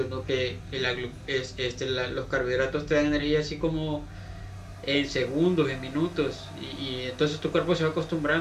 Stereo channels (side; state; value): both; identical; correlation 1.00